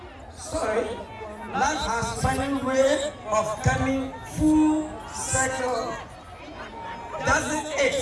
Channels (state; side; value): identical; both; correlation 1.00